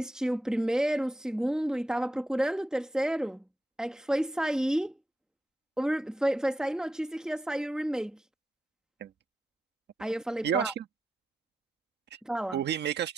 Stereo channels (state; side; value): normal; both; correlation 0.87